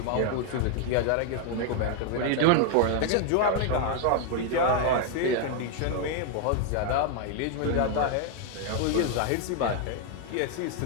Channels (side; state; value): both; different; correlation 0.00